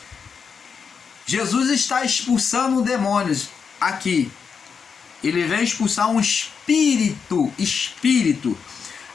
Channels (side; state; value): right; quieter; 6.1 dB